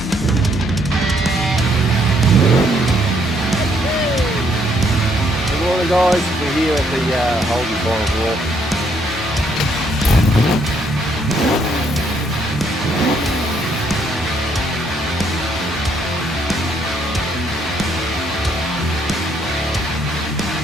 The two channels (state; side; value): normal; both; correlation 0.70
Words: morning, guys. We're here at the Holden Bottle Walk.